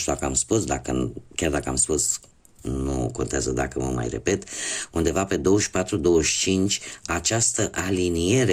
dacă am spus, chiar dacă am spus, nu contează dacă mă mai repet, undeva pe 24-25 această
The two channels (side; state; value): both; identical; correlation 1.00